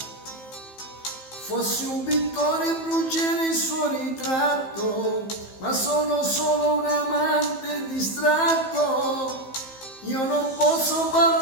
Fossi un pittore brucerei il suo ritratto, ma sono solo un amante distratto. Io non posso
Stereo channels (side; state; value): right; late; 15 ms